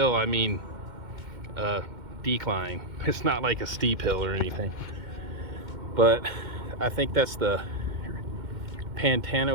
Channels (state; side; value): late; left; 2.1 ms